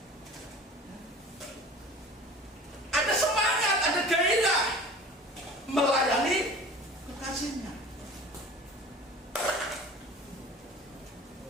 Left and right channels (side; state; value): both; normal; correlation 0.41